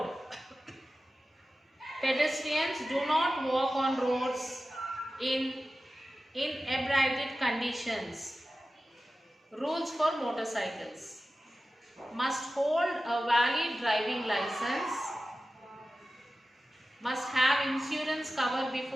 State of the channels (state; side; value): normal; both; correlation 0.94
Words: Pedestrians do not walk on roads in inebriated conditions. Rules for motorcycles. Must hold a valid driving license. Must have insurance cover